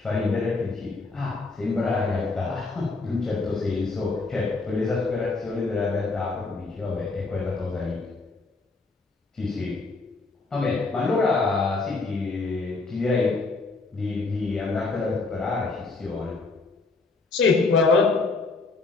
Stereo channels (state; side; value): quieter; right; 3.8 dB